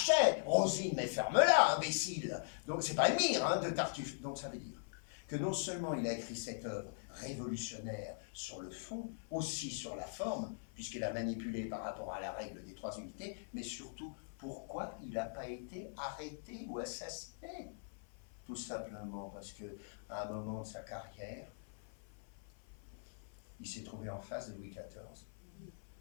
Rosine, mais ferme-la, imbécile. Donc c'est pas Elmire, hein, de Tartuffe. Donc ça veut dire que non seulement il a écrit cette œuvre révolutionnaire sur le fond, aussi sur la forme, puisqu'il a manipulé par rapport à la règle des 3 unités, mais surtout, pourquoi il n'a pas été arrêté ou assassiné? Tout simplement parce qu'à un moment de sa carrière, il s'est trouvé en face de Louis XIV,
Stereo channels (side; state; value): right; silent; 50 dB below the other